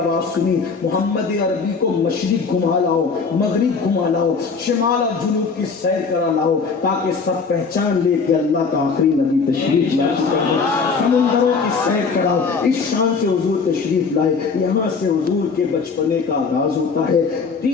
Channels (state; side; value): quieter; right; 5.0 dB